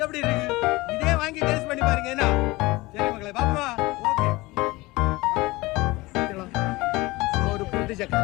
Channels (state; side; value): quieter; right; 21.4 dB